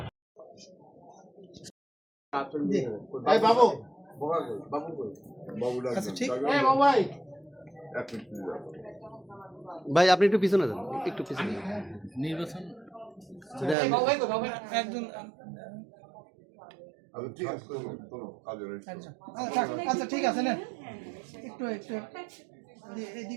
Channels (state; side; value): drops out; left; at 13.8 s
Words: ভাই আপনি একটু পিছনে যান, একটু পিছনে নির্বাচন একজন আচ্ছা ঠিক আছে না, একটু একটু